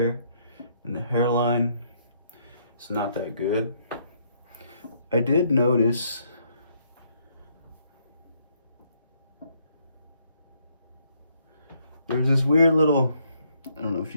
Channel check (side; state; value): both; inverted; correlation -0.70